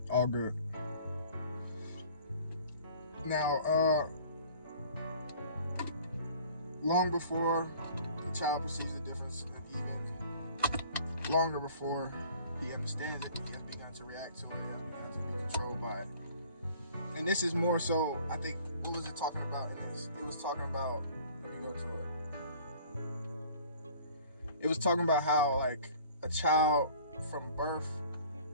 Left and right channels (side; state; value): both; inverted; correlation -0.49